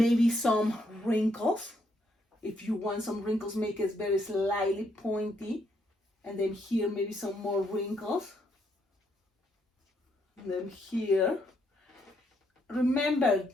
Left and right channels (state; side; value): normal; both; correlation 0.74